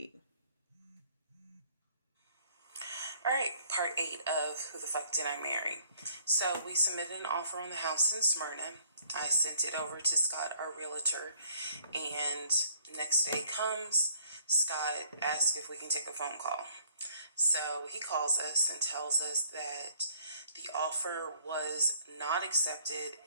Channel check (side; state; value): both; inverted; correlation -0.60